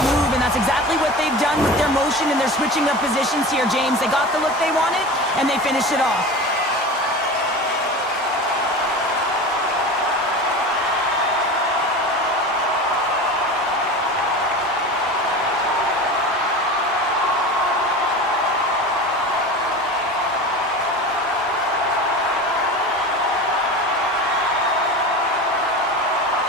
and that's exactly what they've done with their motion and their switching of positions here, James. They got the look they wanted, and they finished it off.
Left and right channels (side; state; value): both; normal; correlation 0.31